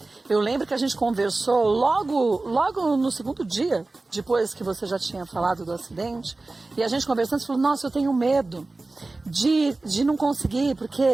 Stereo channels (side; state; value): left; quieter; 3.3 dB